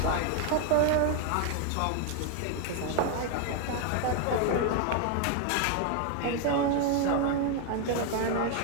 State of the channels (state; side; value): different; both; correlation 0.01